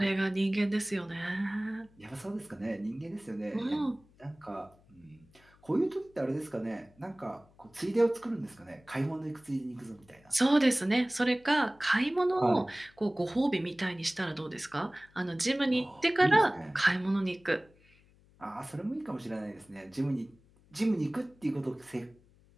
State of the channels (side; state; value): left; noise; hum, 29 dB below the sound